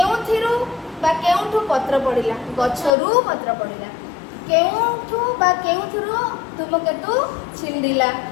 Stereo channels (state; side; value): drops out; right; at 2.9 s